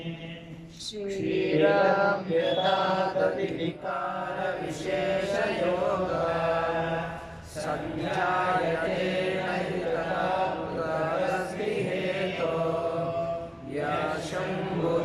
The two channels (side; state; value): both; identical; correlation 1.00